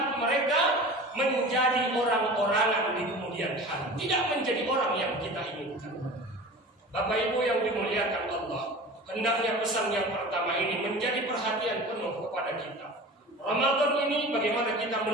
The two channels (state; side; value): normal; both; correlation 0.37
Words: mereka menjadi orang-orangan di kemudian hari, tidak menjadi orang yang kita inginkan. Bapak Ibu yang dimuliakan Allah, hendaknya pesan yang pertama ini menjadi perhatian penuh kepada kita. Ramadan ini bagaimana kita